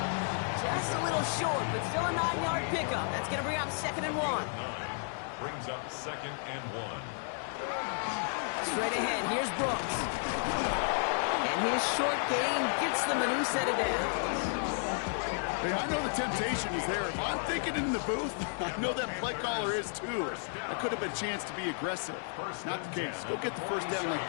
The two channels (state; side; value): silent; right; 56 dB below the other